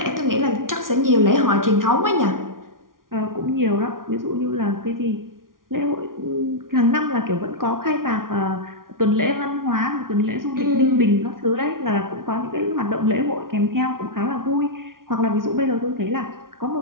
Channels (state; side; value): late; left; 0.91 ms